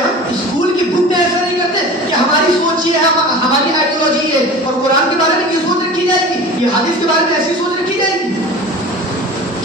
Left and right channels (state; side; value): normal; both; correlation 0.37